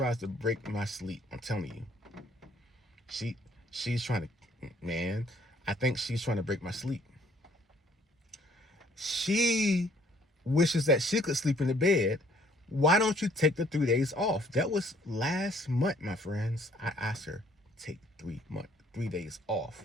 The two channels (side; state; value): both; normal; correlation 0.62